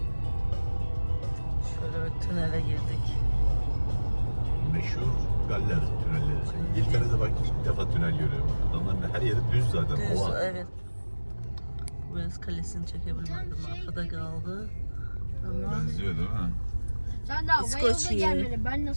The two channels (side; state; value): both; inverted; correlation -1.00